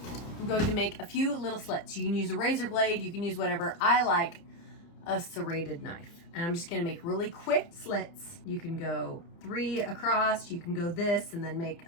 I'm going to make a few little slits. You can use a razor blade, you can use whatever. I like a serrated knife. And I'm just gonna make really quick slits. You can go 3 across, you can go this and then make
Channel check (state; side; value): late; right; 29 ms